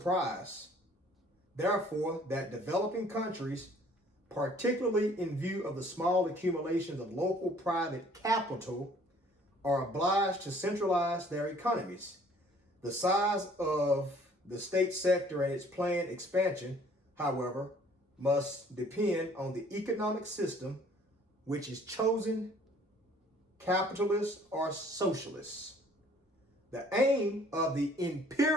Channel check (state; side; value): normal; both; correlation 0.57